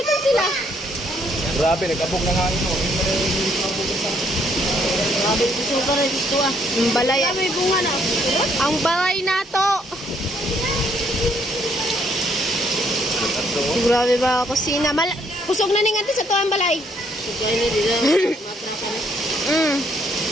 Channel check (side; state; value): both; normal; correlation 0.69